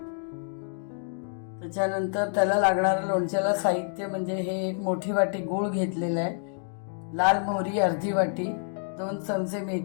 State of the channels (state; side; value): silent; right; digital silence